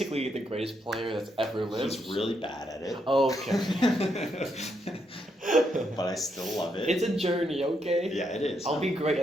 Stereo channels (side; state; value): both; normal; correlation 0.78